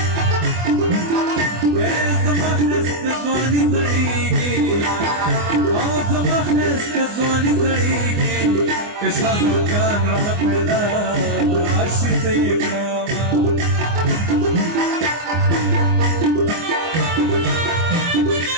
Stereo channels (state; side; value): late; left; 24 ms